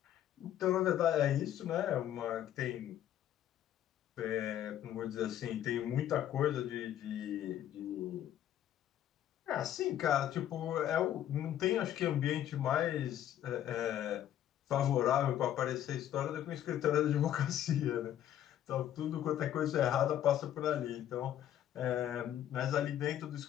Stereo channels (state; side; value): quieter; right; 11.4 dB